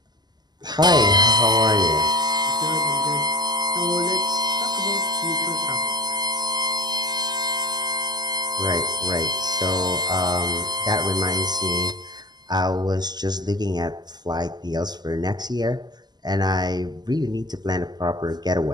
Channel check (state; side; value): late; left; 0.20 ms